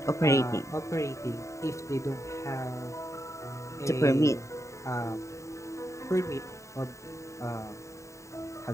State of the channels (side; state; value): right; late; 0.14 ms